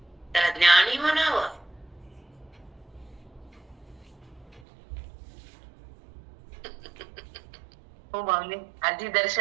त्याला ज्ञानी म्हणावं. हो माऊली, आधी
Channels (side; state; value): left; drops out; at 4.6 s